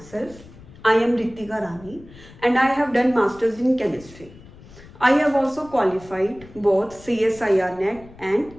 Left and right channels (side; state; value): left; noise; rumble, 21 dB below the sound